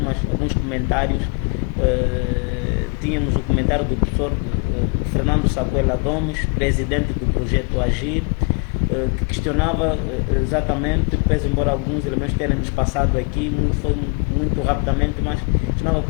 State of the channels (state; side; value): quieter; right; 32.4 dB